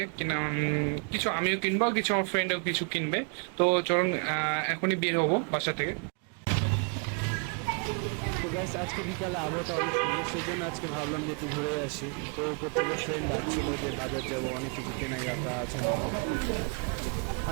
কিছু আমিও কিনবো, কিছু আমার ফ্রেন্ডও কিছু কিনবে। তো চলুন এখনই বের হবো বাসা থেকে। তো গাইস, আজকে বিকালে আবহাওয়াটা অনেক সুন্দর, সেই জন্য আজকে ভাবলাম যে একটু ঘুরে আসি। তো উপর থেকে ফ্রেন্ড ডাকছিল যে বাজার যাবো, অনেক কিছু কেনাকাটা আছে নাকি।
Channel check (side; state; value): left; quieter; 38.6 dB